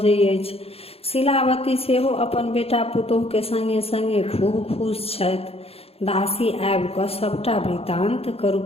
अछि। शीलावती सेहो अपन बेटा पुतोह के संगे संगे खूब खुश छथि। दासी आबि कऽ सबटा वृतांत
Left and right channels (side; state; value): right; late; 0.29 ms